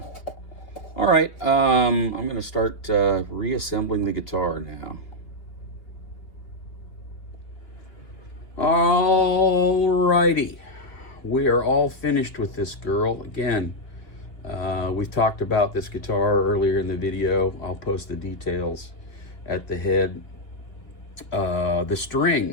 All right, I'm gonna start reassembling the guitar now. Alrighty, we are all finished with this girl. Again, we've talked about this guitar earlier in the video. I'll post the details at the head. The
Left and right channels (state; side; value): late; right; 2.8 ms